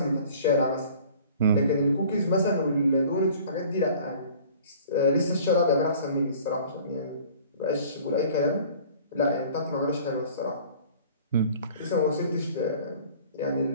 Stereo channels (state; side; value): inverted; both; correlation -0.49